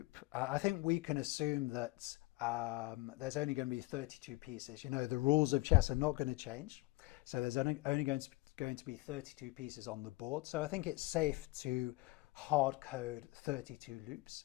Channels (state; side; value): quieter; right; 21.2 dB